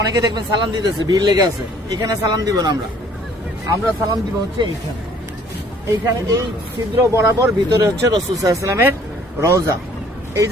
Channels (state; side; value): normal; both; correlation 0.58